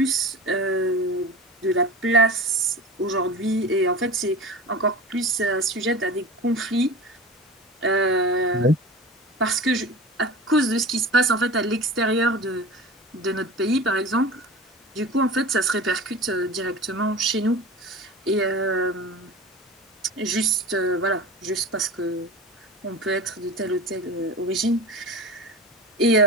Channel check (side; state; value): both; normal; correlation 0.33